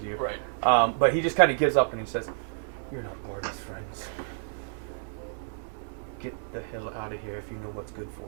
you. Right. But he just kind of gives up and he says, "You're not Barty's friends. Get the hell out of here if you know what's good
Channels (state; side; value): silent; left; digital silence